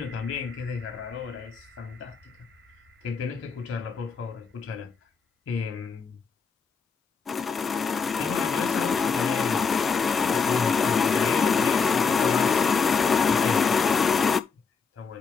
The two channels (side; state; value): right; quieter; 5.4 dB